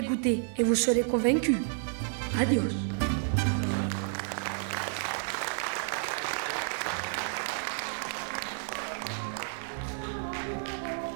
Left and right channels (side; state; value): left; silent; digital silence